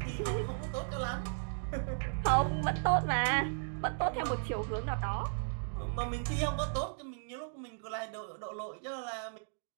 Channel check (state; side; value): silent; left; digital silence